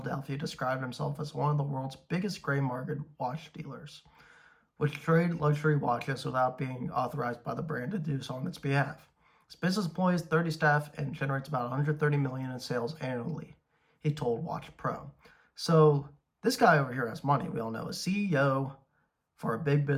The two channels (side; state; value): both; identical; correlation 1.00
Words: described himself as one of the world's biggest gray market watch dealers, which trade luxury watches without being authorized by the brand to do so on its behalf. His business employs 30 staff and generates about $130 million in sales annually, he told Watch Pro. So this guy over here has money. We all know, a CEO for a big